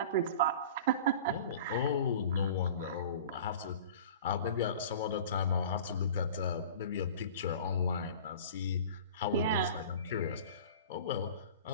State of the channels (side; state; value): both; inverted; correlation -0.40